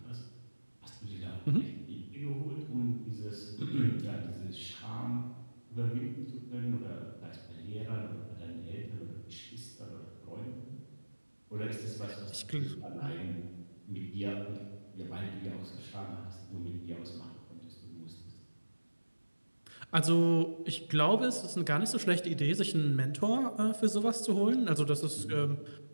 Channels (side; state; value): both; inverted; correlation -1.00